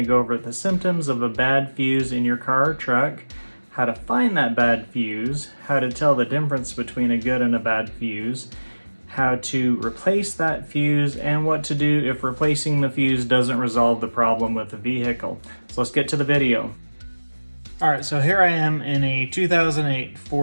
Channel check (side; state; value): both; inverted; correlation -1.00